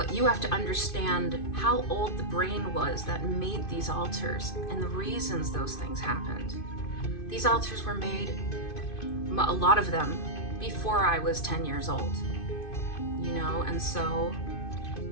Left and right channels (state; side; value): late; right; 2.5 ms